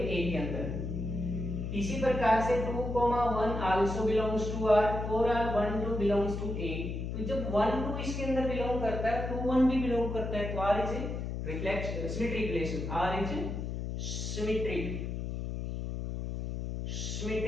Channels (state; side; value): noise; left; hum, 4 dB below the sound